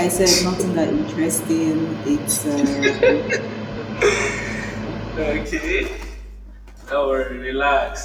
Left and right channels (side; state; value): both; identical; correlation 1.00